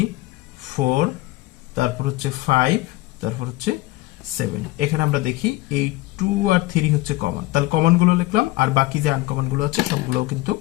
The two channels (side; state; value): right; quieter; 19.4 dB